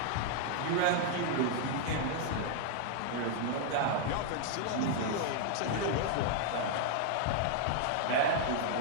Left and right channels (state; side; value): different; both; correlation 0.00